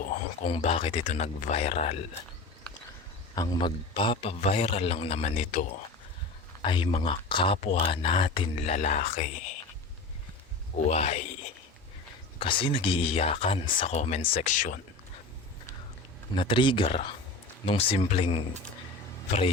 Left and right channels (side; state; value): right; quieter; 3.3 dB